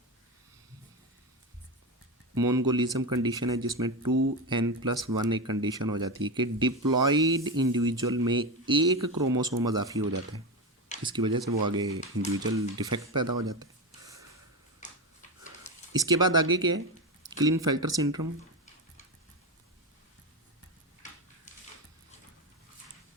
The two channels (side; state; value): both; normal; correlation 0.17